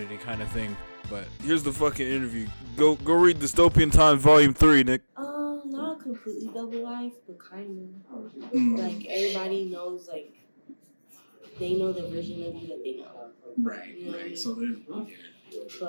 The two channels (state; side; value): inverted; both; correlation -1.00